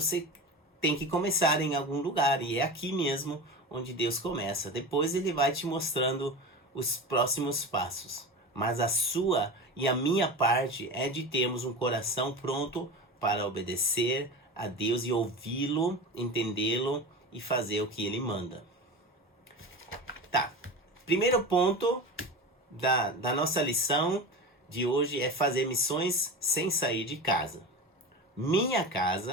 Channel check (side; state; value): both; normal; correlation 0.28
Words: tem que começar em algum lugar, e é aqui mesmo onde Deus começa. Depois ele vai te mostrando os próximos passos. Mas a sua e a minha parte é de termos um coração pronto para obedecer a Deus e ouvi-lo, entendê-lo e fazer o que ele manda. Tá, primeiro ponto da nossa lição de hoje é fazer missões sem sair de casa. Minha